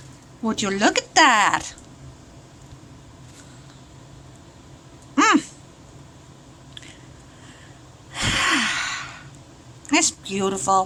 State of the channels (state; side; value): identical; both; correlation 1.00